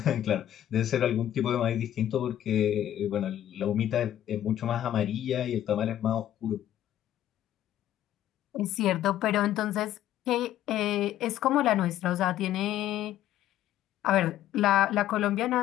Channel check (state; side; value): quieter; right; 12.1 dB